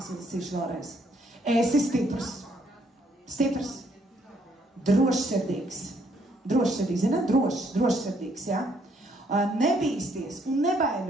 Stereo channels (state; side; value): normal; both; correlation 0.69